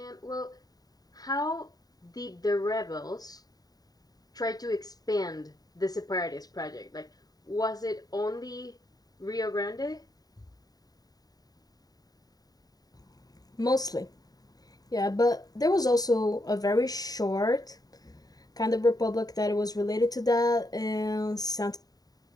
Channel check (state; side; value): late; right; 0.18 ms